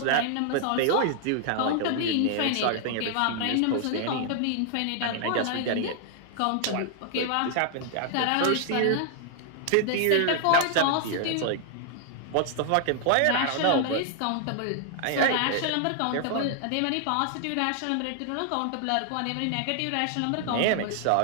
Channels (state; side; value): different; both; correlation 0.00